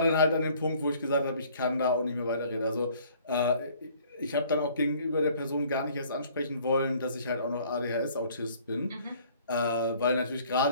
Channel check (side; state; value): both; inverted; correlation -0.57